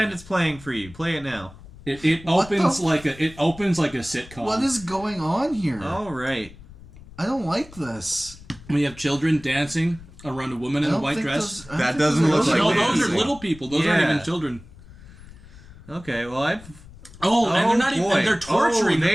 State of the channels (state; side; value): noise; left; rumble, 19 dB below the sound